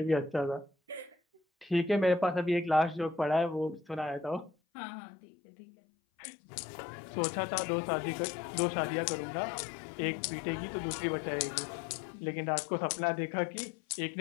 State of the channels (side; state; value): right; drops out; at 4.5 s